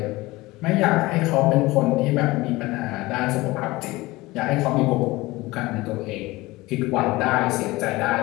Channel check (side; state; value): right; quieter; 20.4 dB